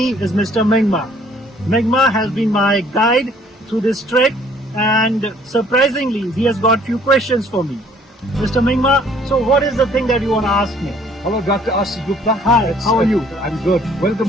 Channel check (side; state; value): both; normal; correlation 0.59